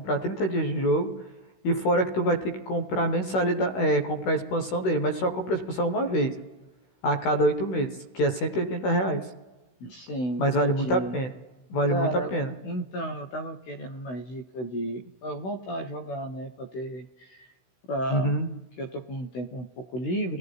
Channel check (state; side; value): late; right; 16 ms